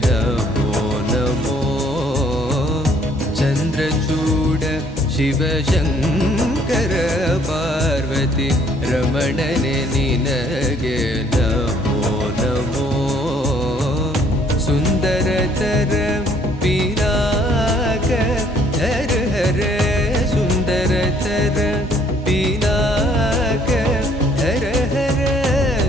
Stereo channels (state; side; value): normal; both; correlation 0.62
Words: नमो नमो चंद्रचूड शिव शंकर पार्वती रमणने निनगे नमो नमो सुंदरतर पिनाक हर हर सुंदरतर पिनाक हर हर